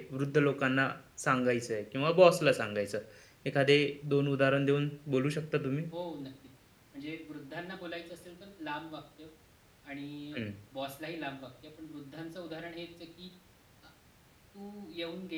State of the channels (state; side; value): identical; both; correlation 1.00